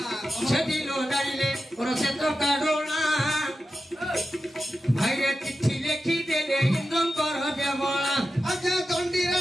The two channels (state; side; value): normal; both; correlation 0.91